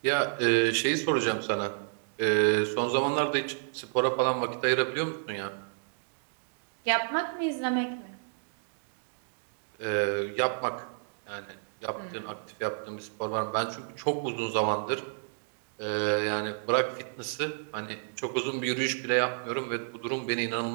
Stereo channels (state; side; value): silent; left; digital silence